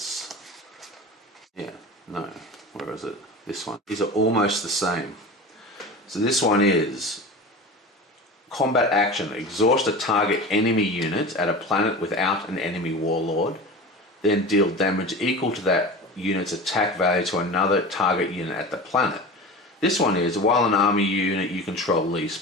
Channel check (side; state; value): both; normal; correlation 0.32